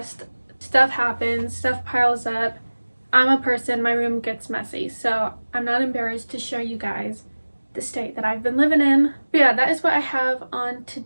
Stuff happens, stuff piles up. I'm a person, my room gets messy, so I'm not embarrassed to show you guys the state that I've been living in. But yeah, that is what I have on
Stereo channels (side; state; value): both; inverted; correlation -1.00